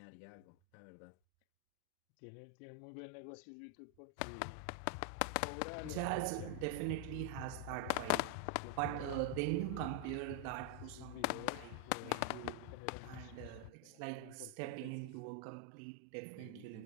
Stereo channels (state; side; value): different; both; correlation 0.00